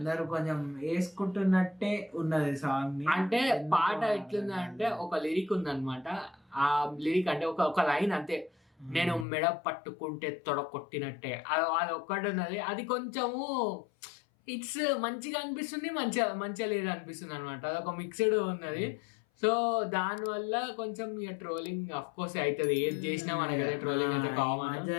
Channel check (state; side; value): drops out; right; at 9.2 s